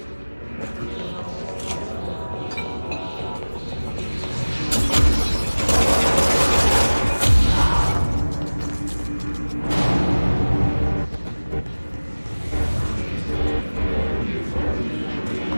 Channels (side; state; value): both; inverted; correlation -1.00